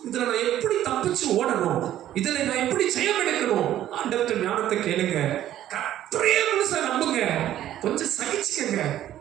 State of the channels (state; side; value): quieter; left; 12.3 dB